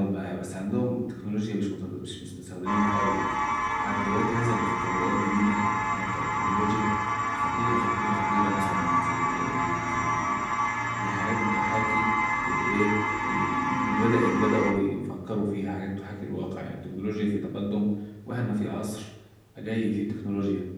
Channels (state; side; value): identical; both; correlation 1.00